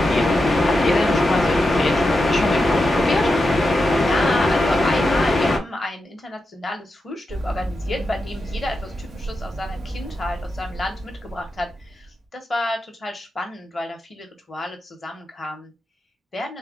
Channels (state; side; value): normal; both; correlation 0.88